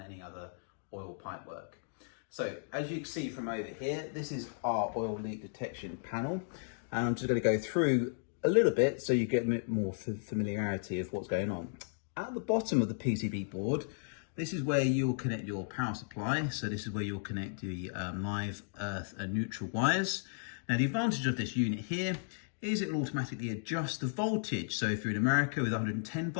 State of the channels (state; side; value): silent; right; digital silence